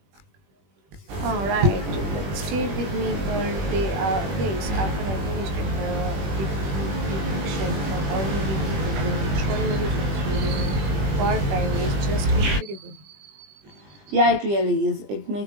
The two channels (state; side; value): late; left; 20 ms